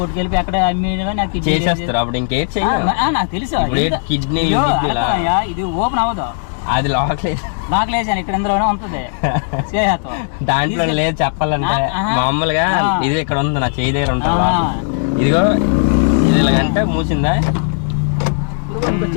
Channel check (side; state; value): right; silent; 69 dB below the other